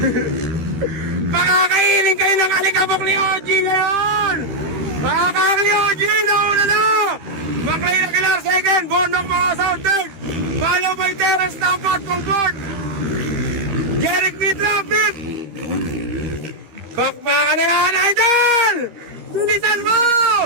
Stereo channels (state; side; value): late; left; 13 ms